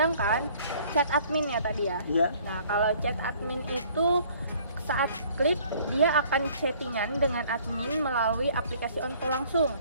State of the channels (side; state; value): both; inverted; correlation -0.56